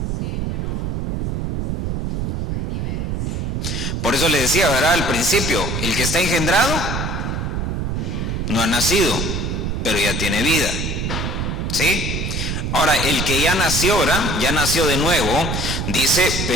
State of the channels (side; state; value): right; noise; rumble, 1 dB below the sound